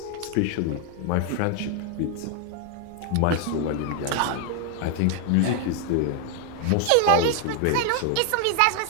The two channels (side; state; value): both; different; correlation 0.00